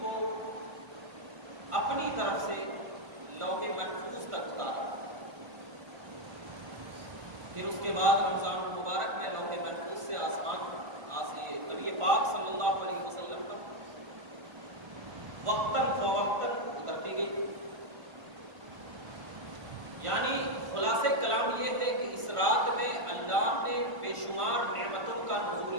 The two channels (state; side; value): late; left; 1.5 ms